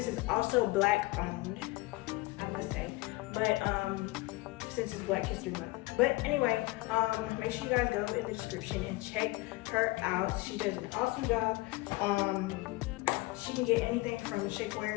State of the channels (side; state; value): right; quieter; 21.7 dB